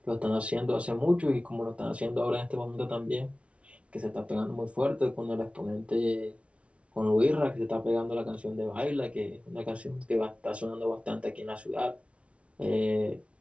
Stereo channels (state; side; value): late; left; 0.062 ms